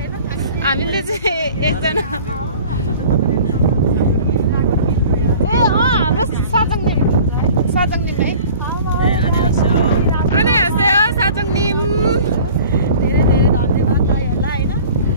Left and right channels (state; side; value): inverted; both; correlation -0.45